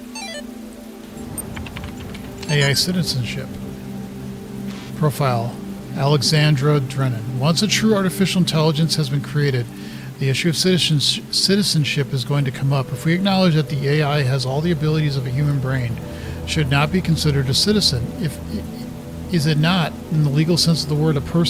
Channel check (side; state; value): both; identical; correlation 1.00